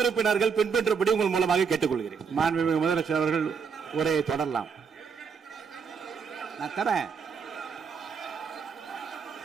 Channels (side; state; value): left; quieter; 6.1 dB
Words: உறுப்பினர்கள் பின்பற்றபடி உங்கள் மூலமாக கேட்டுக்கொள்கிறேன். மாண்புமிகு முதலமைச்சர் அவர்கள் உரையை தொடரலாம். நான் தரேன்.